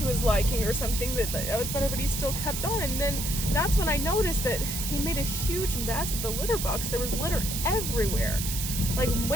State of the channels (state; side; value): noise; right; hiss, 4 dB below the sound